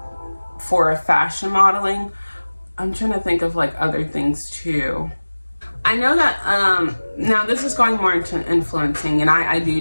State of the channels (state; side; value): inverted; both; correlation -1.00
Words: for fashion modeling. I'm trying to think of like other things too. I know that now this is going more into influencing, and I